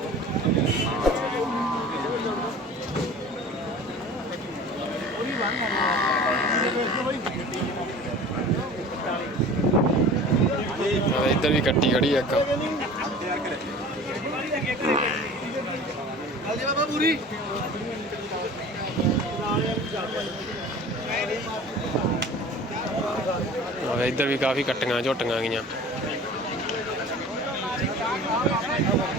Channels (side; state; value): both; normal; correlation 0.41